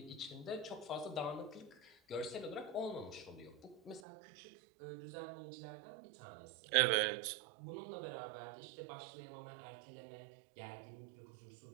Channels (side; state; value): left; drops out; at 4.0 s